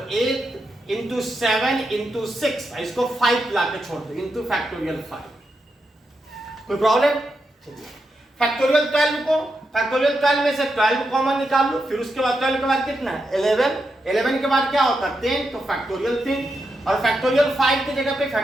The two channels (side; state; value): both; normal; correlation 0.86